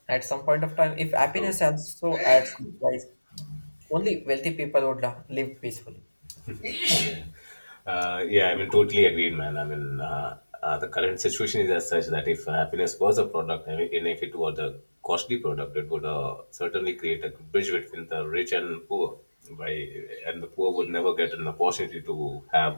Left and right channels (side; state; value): both; inverted; correlation -1.00